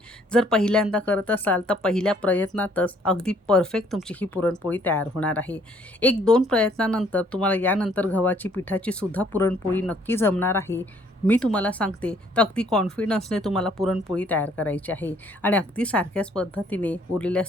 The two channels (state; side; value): normal; both; correlation 0.63